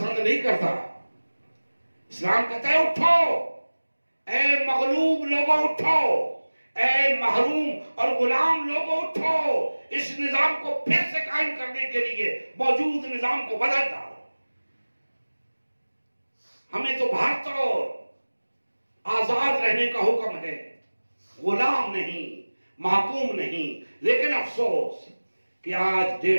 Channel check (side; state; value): both; inverted; correlation -1.00